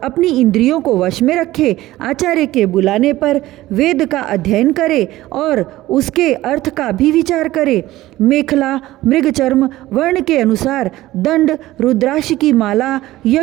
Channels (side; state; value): left; quieter; 16.4 dB